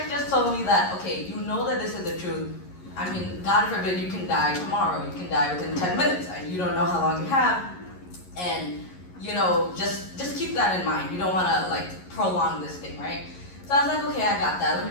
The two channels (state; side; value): late; right; 11 ms